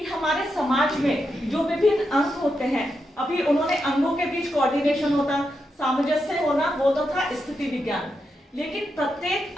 हमारे समाज में जो विभिन्न अंग होते हैं, अभी उन्होंने अंगों के बीच कोऑर्डिनेशन होता, सामंजस्य होना, वो तो था स्थिति विज्ञान। लेकिन प्रत्येक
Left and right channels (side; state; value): both; normal; correlation 0.85